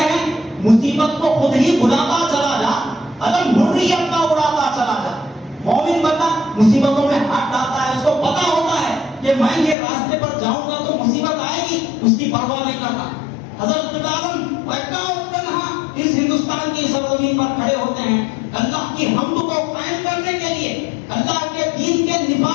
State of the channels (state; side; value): drops out; right; at 9.8 s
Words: ہیں مصیبت کو خود ہی بلاتا چلا جا، علم حریت کا اڑاتا چلا جا۔ مومن بندہ مصیبتوں میں ہاتھ ڈالتا ہے، اس کو پتا ہوتا ہے کہ میں یہ راستے پر جاؤں گا تو مصیبت آئے گی، اس کی پرواہ نہیں کرتا۔ حضرت عالم اکا تنہا اس ہندوستان کی سرزمین پر کھڑے ہوتے ہیں اللہ کی حمد کو قائم کرنے کے لیے، اللہ کے دین کے